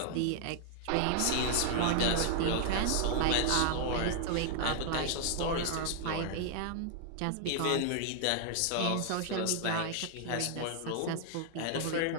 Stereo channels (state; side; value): different; both; correlation 0.00